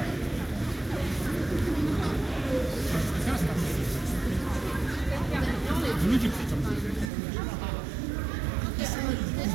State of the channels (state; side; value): drops out; left; at 7.1 s